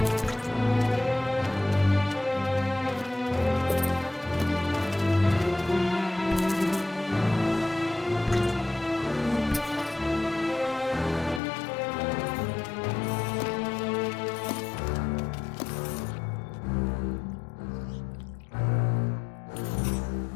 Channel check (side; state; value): right; drops out; at 11.4 s